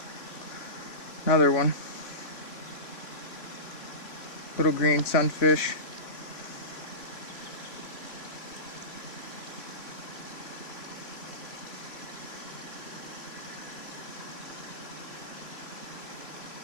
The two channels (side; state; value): right; late; 3.1 ms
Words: Another one. Little green sunfish.